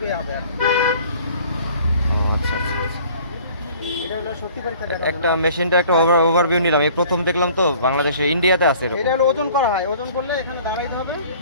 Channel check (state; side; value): inverted; both; correlation -0.51